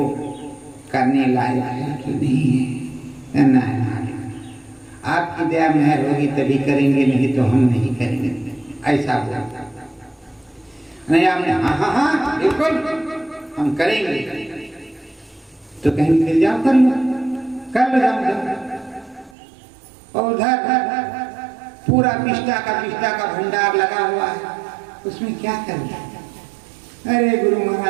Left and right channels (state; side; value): drops out; left; at 19.4 s